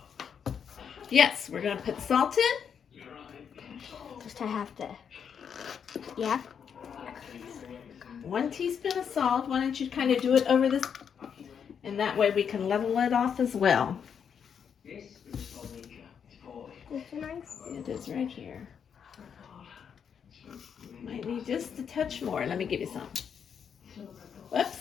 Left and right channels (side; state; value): right; quieter; 7.4 dB